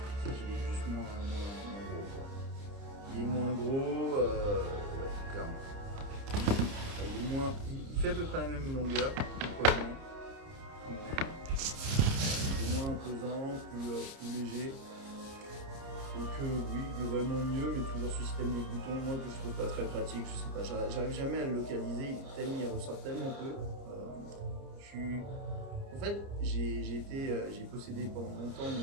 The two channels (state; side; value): late; left; 30 ms